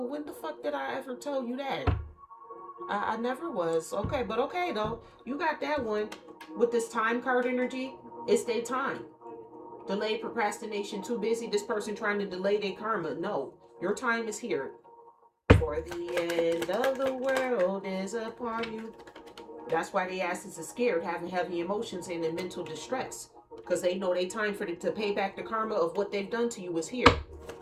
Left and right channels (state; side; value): identical; both; correlation 1.00